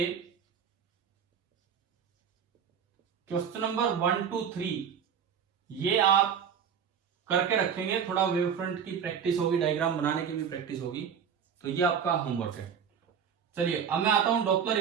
क्वेश्चन नंबर 1 to 3 ये आप करके रखेंगे। थोड़ा वेवफ्रंट की प्रैक्टिस होगी, डायग्राम बनाने की भी प्रैक्टिस होगी, तो ये आपका होमवर्क है। चलिए अब मैं आता हूं डॉपलर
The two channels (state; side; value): quieter; left; 7.5 dB